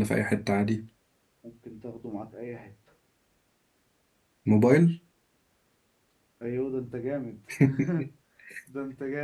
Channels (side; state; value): both; identical; correlation 1.00